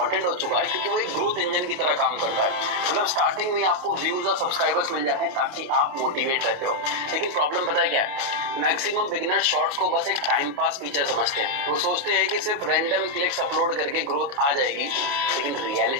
हो चुका है क्योंकि वो एक ग्रोथ इंजन की तरह काम करता है। मतलब स्टार्टिंग में आपको व्यूज और सब्सक्राइबर्स मिल जाते हैं ताकि आप मोटिवेट रहते हो, लेकिन प्रॉब्लम पता है क्या है? मैक्सिमम बिगिनर शॉर्ट्स को बस एक टाइम पास फीचर समझते हैं। वो सोचते हैं कि सिर्फ रैंडम क्लिक्स अपलोड करके ग्रोथ आ जाएगी, लेकिन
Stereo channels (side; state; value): left; late; 29 ms